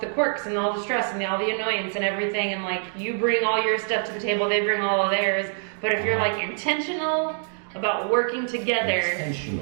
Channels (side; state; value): left; silent; 62 dB below the other